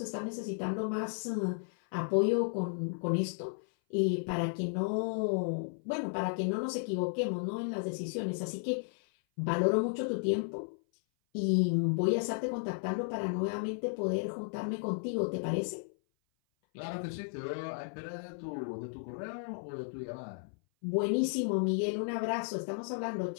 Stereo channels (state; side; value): silent; right; 55 dB below the other